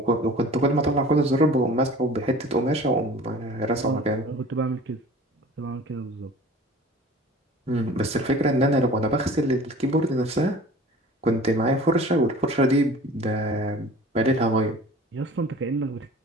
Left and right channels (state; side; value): normal; both; correlation 0.44